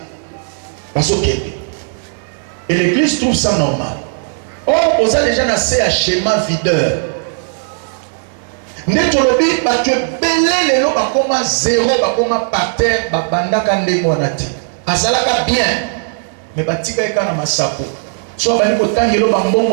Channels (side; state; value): left; silent; digital silence